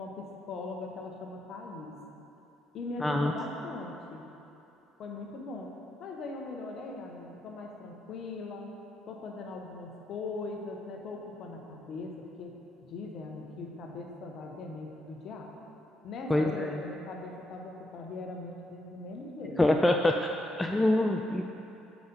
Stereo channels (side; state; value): both; normal; correlation 0.81